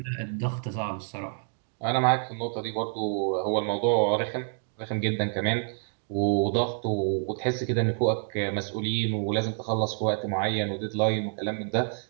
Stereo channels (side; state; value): left; silent; 59 dB below the other